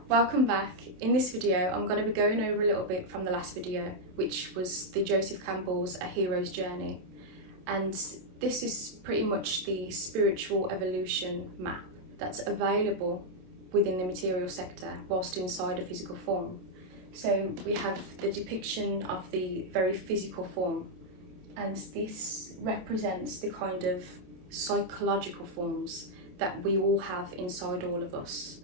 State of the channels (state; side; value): late; left; 27 ms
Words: Welcome back. In this video I'm going to be going over a little bit from the last video, which was the Joseph Campbell's A Hero's Journey, and this is pretty much the spiritual evolution map that's available within the material sector whilst inside a physical form. So we have the depiction of the very physical form, and this represents the kind of psychological forms that we all have inside all of us.